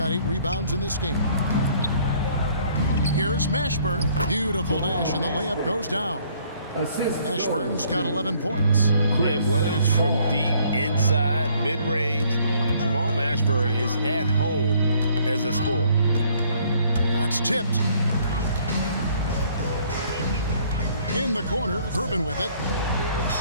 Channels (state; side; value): inverted; both; correlation -0.62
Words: 8 rebounds in this game. Here's Mashburn. Beautiful dish, and the layup goes down. Assist Ashburn's got 11 points. And whether it's from deep, inside, mid-range, Jamal Mashburn is at home as a scorer. That's tipped. In the corner, Herman with it.